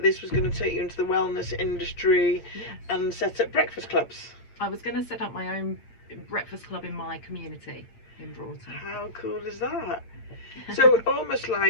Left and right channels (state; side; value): late; right; 8.8 ms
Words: this was going to take you into the wellness industry. Yes. And set up breakfast clubs. I was going to set up my own breakfast club in my community in Broughton. How cool is that? So almost